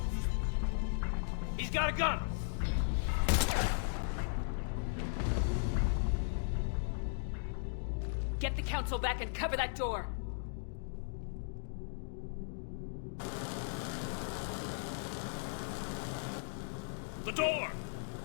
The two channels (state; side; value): silent; right; digital silence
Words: He's got a gun! Get the council back and cover that door! The door!